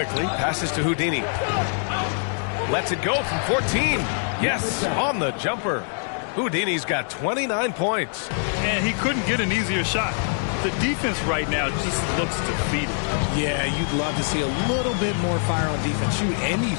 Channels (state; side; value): silent; right; 61 dB below the other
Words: passes to Houdini. Lets it go from 14. Yes, on the jumper. Houdini's got 29 points. And he couldn't get an easier shot. The defense right now just looks defeated. Yeah, you'd love to see a little bit more fire on defense. Shoot, any